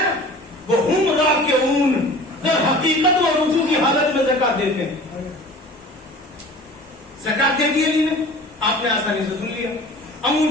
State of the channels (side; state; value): both; normal; correlation 0.42